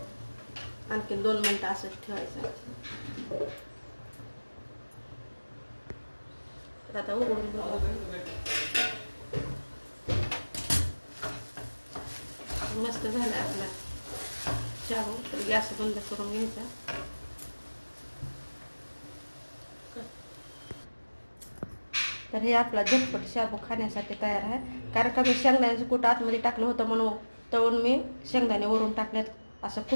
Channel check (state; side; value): inverted; both; correlation -1.00